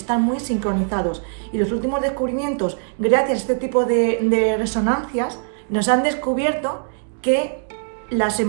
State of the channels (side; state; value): left; silent; 62 dB below the other